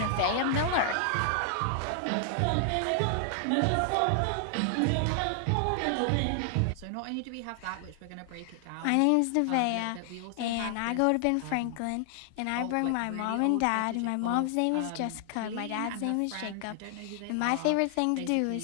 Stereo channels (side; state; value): both; different; correlation 0.00